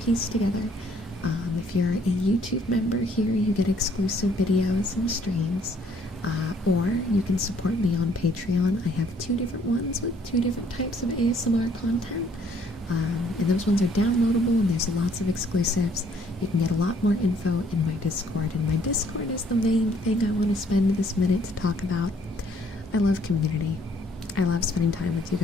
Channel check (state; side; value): normal; both; correlation 0.64